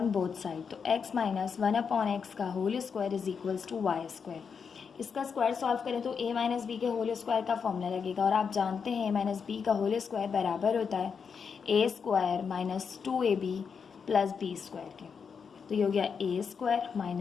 both side, तो x माइनस 1/x का whole square is equals to y square. इसका स्क्वायर सॉल्व करें तो a माइनस बी के होल स्क्वायर का फॉर्मूला लगेगा, और आप जानते हैं a माइनस बी का होल स्क्वायर बराबर होता है a square minus 2ab plus B square के। तो ये हो गया a स्क्वायर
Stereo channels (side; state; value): right; quieter; 6.2 dB